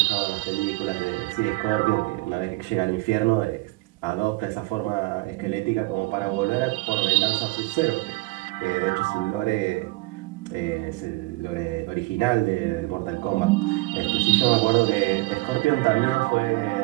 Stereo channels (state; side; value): quieter; left; 22.0 dB